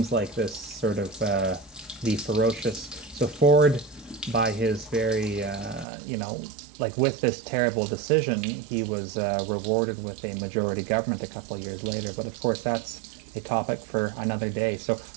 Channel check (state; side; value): drops out; left; at 5.9 s